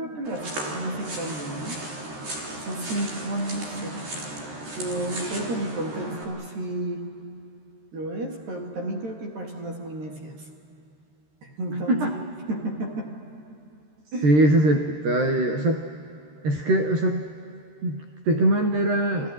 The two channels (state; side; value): late; left; 13 ms